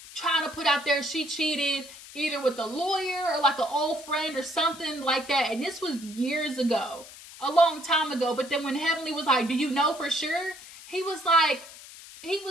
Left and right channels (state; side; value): noise; left; hiss, 17 dB below the sound